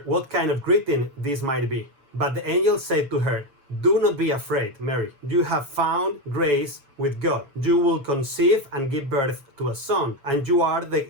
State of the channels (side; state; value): left; late; 6.8 ms